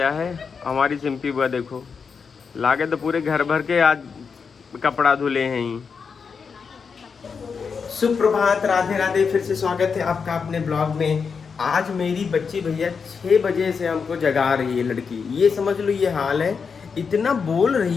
है। हमारी सिंपी बुआ देखो लागे तो पूरे घर भर के आज कपड़ा धुले हैं ही। सुप्रभात, राधे राधे। फिर से स्वागत है आपका अपने ब्लॉग में। आज मेरी बच्ची भैया 6 बजे से हमको जगा रही है लड़की। ये समझ लो ये हाल है। इतना बोल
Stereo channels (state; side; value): quieter; right; 5.7 dB